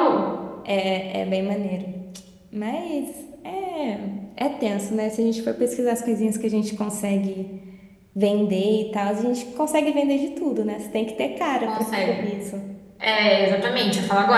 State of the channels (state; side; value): identical; both; correlation 1.00